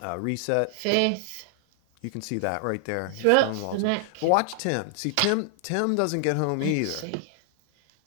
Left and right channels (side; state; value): both; different; correlation 0.00